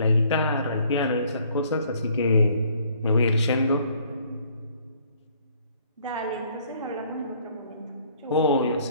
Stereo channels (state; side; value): inverted; both; correlation -0.62